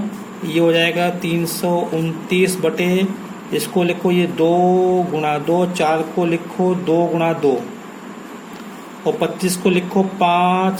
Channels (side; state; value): both; identical; correlation 1.00